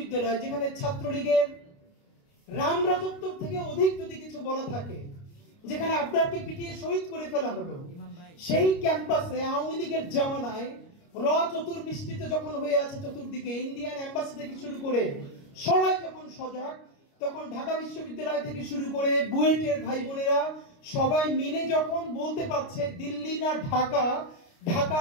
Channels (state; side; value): late; right; 29 ms